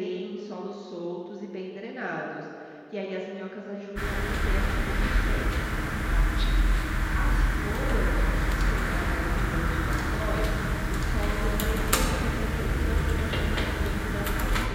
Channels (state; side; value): identical; both; correlation 1.00